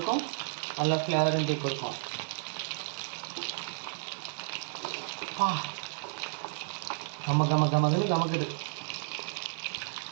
நல்ல ஃப்ளேவரும் டீ கொடுக்கும். கமக்குது.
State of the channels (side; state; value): left; silent; 56 dB below the other